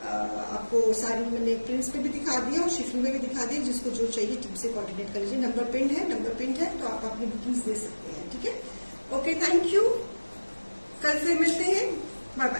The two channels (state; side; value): inverted; both; correlation -1.00